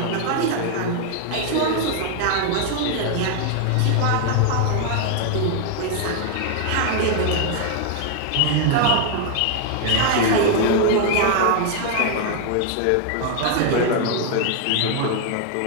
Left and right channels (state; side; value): different; both; correlation 0.00